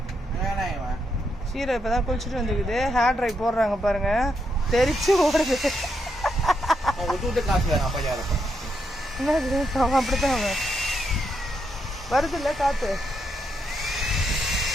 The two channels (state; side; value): normal; both; correlation 0.80